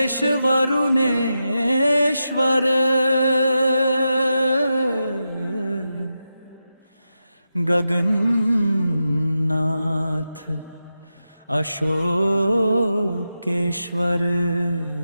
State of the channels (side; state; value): both; inverted; correlation -0.89